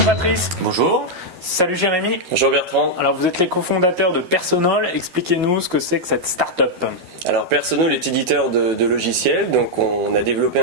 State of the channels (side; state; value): left; late; 12 ms